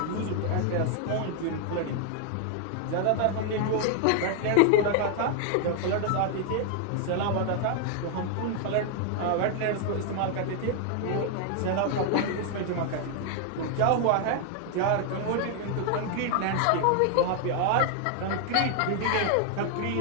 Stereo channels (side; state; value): both; different; correlation 0.00